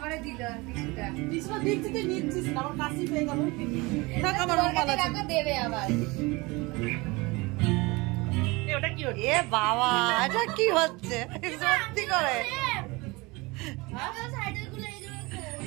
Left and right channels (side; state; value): left; quieter; 24.3 dB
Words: এ বাবা এটা কি হচ্ছে সত্যি করে?